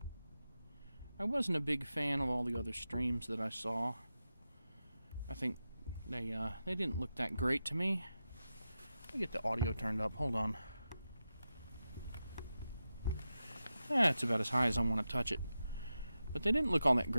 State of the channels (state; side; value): inverted; both; correlation -0.91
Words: I wasn't a big fan of all the other streams that I saw. I think they didn't look that great to me. Let me get the audio turned up. Hold on. It's about as high as I want to touch it. But they didn't look all that